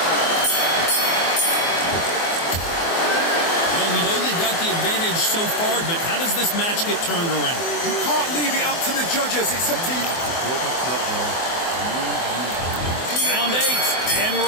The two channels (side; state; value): right; late; 24 ms